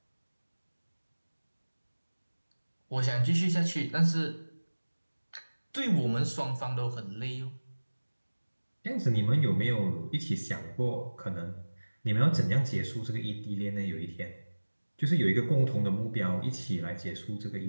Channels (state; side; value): inverted; both; correlation -1.00